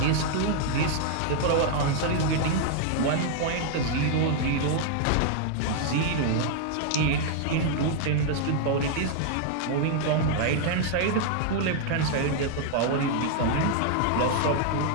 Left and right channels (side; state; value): both; different; correlation 0.00